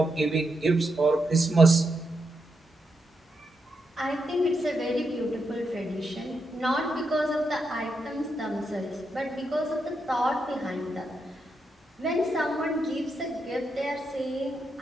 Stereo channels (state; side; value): normal; both; correlation 0.83